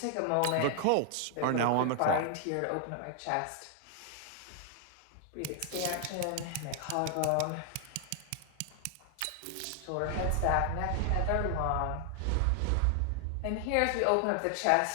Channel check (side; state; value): both; different; correlation 0.00